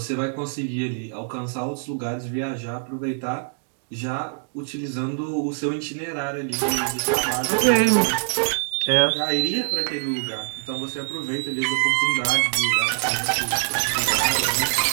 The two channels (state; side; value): silent; left; digital silence